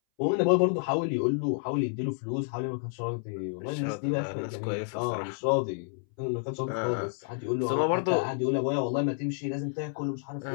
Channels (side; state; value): right; silent; 58 dB below the other